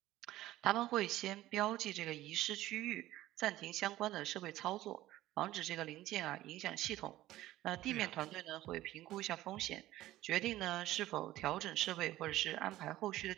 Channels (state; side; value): quieter; left; 15.4 dB